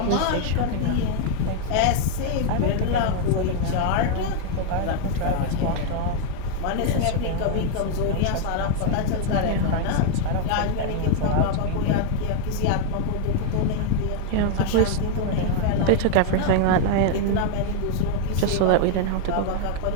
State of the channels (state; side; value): different; both; correlation 0.00